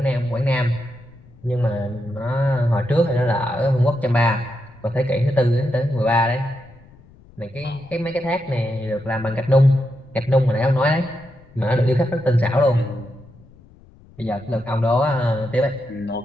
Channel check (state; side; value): noise; left; rumble, 25 dB below the sound